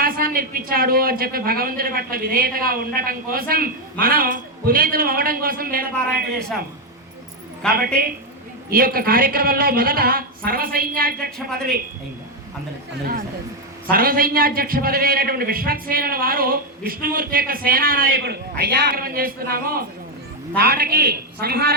ఇప్పించాడు అని చెప్పి భగవంతుడి పట్ల విధేయతగా ఉండటం కోసం మనం పునీతులు అవ్వడం కోసం వేదపారాయణ చేశాం కాబట్టి ఈ యొక్క కార్యక్రమంలో మొదట సర్వసైన్యాధ్యక్ష పదవి సర్వసైన్యాధ్యక్ష పదవి అయినటువంటి విశ్వక్సేనుల వారు విష్ణుమూర్తి యొక్క సేనా నాయకుడు అయ్యా చేస్తున్నాము తాటకి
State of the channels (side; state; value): both; normal; correlation 0.04